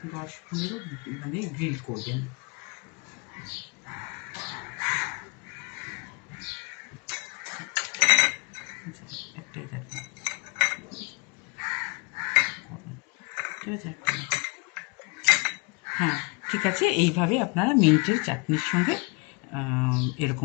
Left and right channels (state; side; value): quieter; right; 31.1 dB